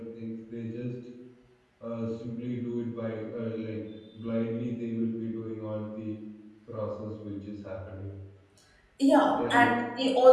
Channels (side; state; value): both; identical; correlation 1.00